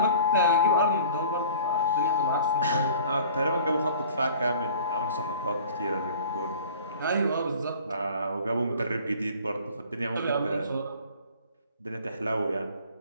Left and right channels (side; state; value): both; inverted; correlation -0.47